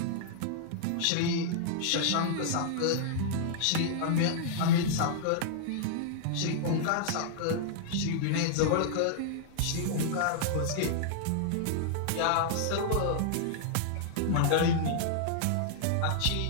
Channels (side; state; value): both; different; correlation -0.01